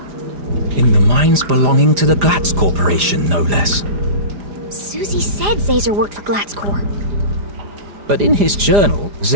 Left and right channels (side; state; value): left; late; 4.9 ms